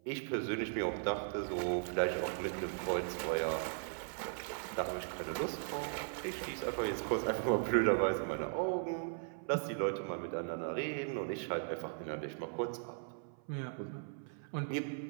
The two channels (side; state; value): left; silent; 52 dB below the other